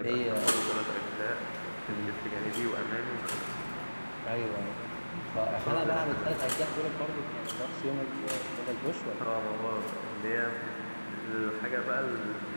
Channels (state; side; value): inverted; both; correlation -1.00